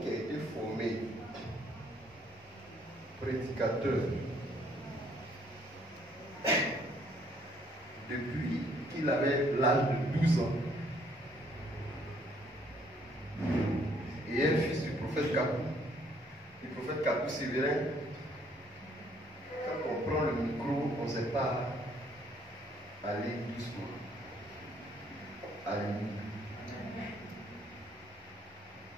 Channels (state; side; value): normal; both; correlation 0.65